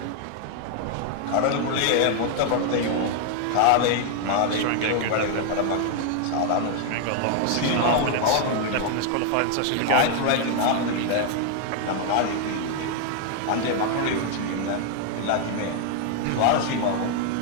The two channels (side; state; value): both; different; correlation 0.00